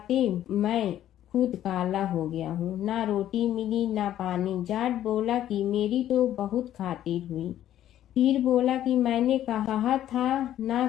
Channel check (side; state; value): right; quieter; 12.0 dB